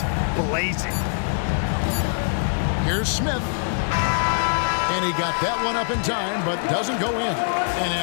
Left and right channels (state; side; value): silent; right; 63 dB below the other